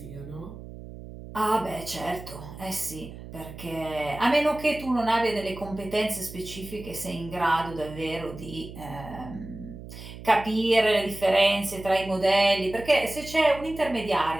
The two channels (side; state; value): right; noise; hum, 13 dB below the sound